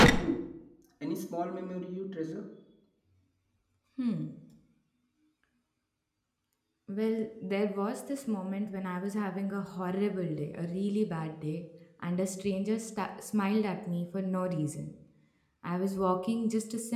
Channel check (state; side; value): identical; both; correlation 1.00